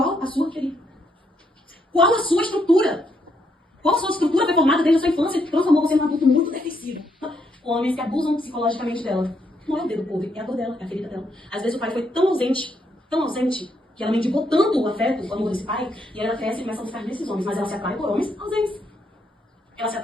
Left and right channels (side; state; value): both; normal; correlation 0.76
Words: a sua, querida? Qual a sua estrutura? Qual a sua estrutura foi formada desde a sua infância que transformou você num adulto muito defensivo? Homens que abusam psicologicamente dela. Não é o dedo podre, é a dor dela, é a ferida dela. Às vezes o pai foi tão ausente, que ela mendigou tanto o afeto, o amor desse pai, e ela cresce e começa a buscar nesses homens. Mas ela se atrai por homens ausentes. Ela se